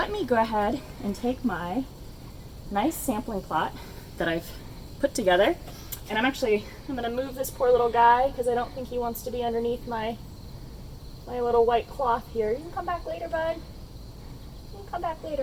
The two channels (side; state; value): both; identical; correlation 1.00